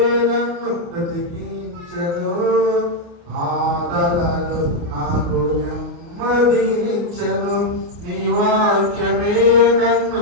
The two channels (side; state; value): left; late; 29 ms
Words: నన్ను బ్రతికించెను. బాధలలో నాకు నెమ్మదినిచ్చెను. నీ వాక్యమే నన్ను